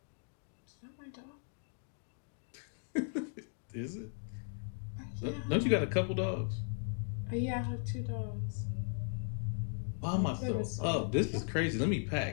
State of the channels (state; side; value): silent; right; 53 dB below the other